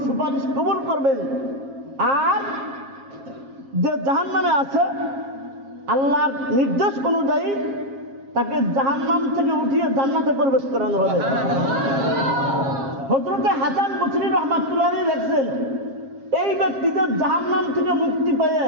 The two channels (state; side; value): late; left; 7.4 ms